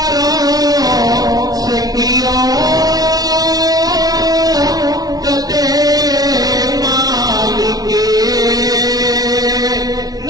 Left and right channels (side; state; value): left; late; 0.19 ms